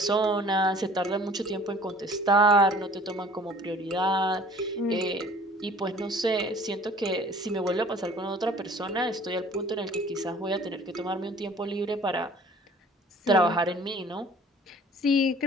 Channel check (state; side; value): normal; both; correlation 0.50